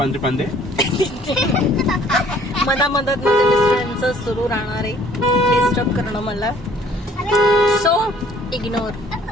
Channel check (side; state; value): both; normal; correlation 0.58